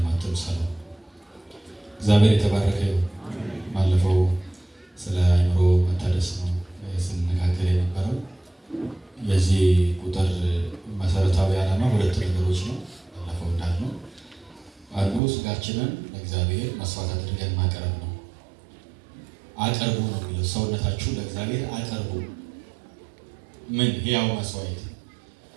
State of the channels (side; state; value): left; drops out; at 15.2 s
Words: አትምሰሉ። እግዚአብሔር የተባረከ ይሁን። ባለፈው ስለ አእምሮ መታደስ ነው ስንነጋገር የነበረው። የዚህ ቁጥር መሰረታዊ ዓላማ ሁለት ነገሮች ነው። ባለፈው እንዳልነው አንዱ ስጋችንን ለእግዚአብሔር መስዋዕት አድርገን ማቅረብ ነው። አቅርቡ ነው የሚለው። ሰውነታችሁ ለእግዚአብሔር አቅርቡ። ምን? ሕያው መስዋዕት።